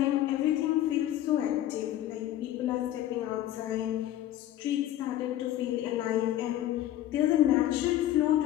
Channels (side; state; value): right; quieter; 13.0 dB